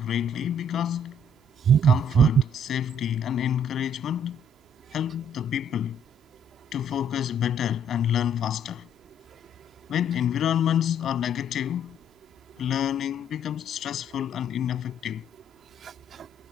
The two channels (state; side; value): normal; both; correlation 0.64